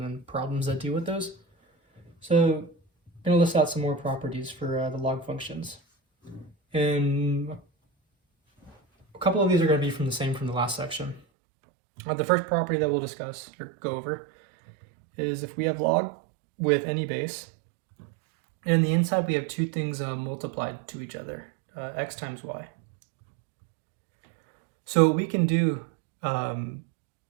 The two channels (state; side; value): drops out; left; at 11.2 s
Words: then problems that deal with those. So I'm going to list out some more properties for the log functions. And a couple of these are going to be from the last section. The first property that we'll discuss or go over is if we have log with any base, and in the inside we have two things multiplied to each other, x times y. So what we can do